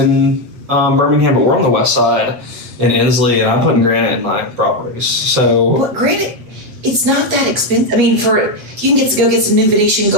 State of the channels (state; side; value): late; left; 8.3 ms